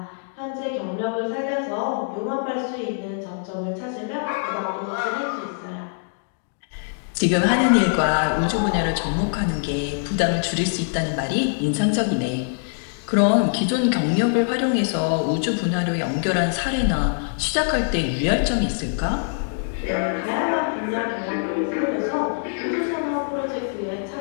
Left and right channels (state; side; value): silent; right; digital silence